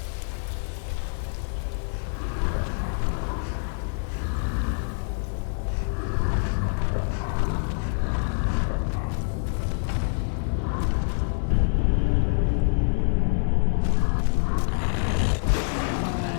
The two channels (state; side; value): silent; right; 61 dB below the other